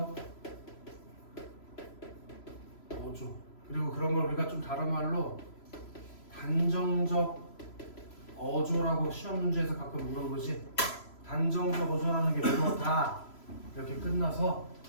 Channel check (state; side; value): late; right; 3.0 ms